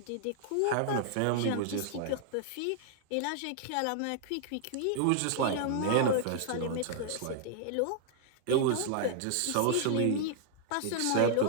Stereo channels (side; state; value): both; different; correlation -0.01